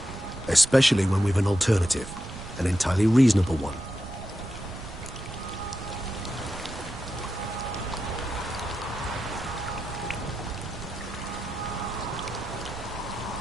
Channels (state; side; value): noise; right; rumble, 12 dB below the sound